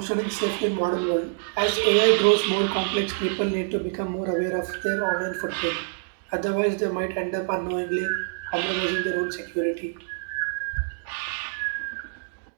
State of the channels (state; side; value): silent; left; digital silence